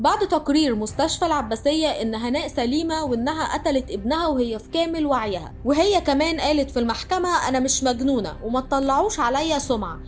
تقرير مستشفى العباسية ان هناء سليمة وانها قتلت ابنها وهي في كامل وعيها، وهي كمان قالت في المحكمة انا مش مجنونة وما تطلعوش عليا سمعة،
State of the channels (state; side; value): identical; both; correlation 1.00